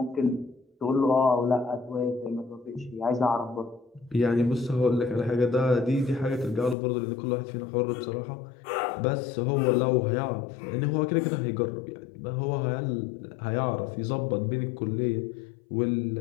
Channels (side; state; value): right; drops out; at 6.8 s